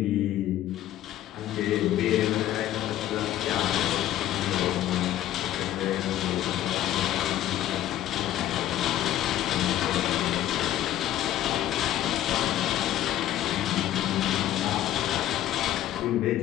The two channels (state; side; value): quieter; right; 13.0 dB